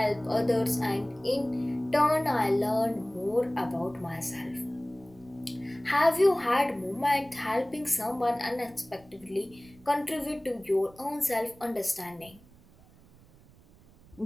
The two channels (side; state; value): right; noise; rumble, 25 dB below the sound